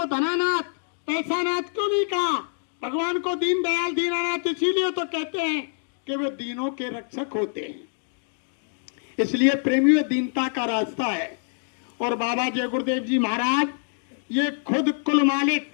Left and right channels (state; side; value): silent; right; 62 dB below the other